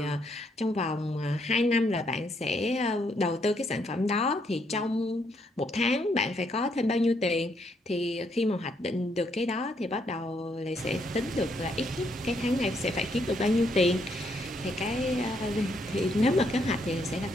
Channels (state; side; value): normal; both; correlation 0.74